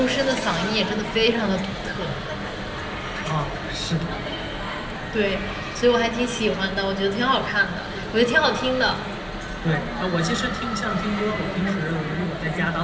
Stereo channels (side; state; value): both; identical; correlation 1.00